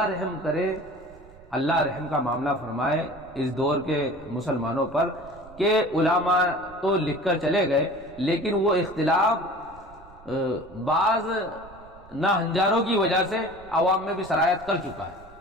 رحم کرے، اللہ رحم کا معاملہ فرمائے اس دور کے مسلمانوں پر کہ علماء تو لکھ کر چلے گئے، لیکن وہ اختلاف بعض ناہنجاروں کی وجہ سے عوام میں بھی سرایت کر چکا ہے،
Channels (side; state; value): right; noise; rumble, 22 dB below the sound